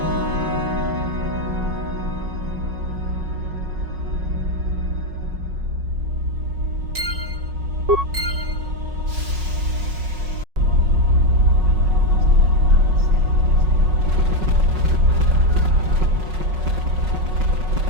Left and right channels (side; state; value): left; late; 5.4 ms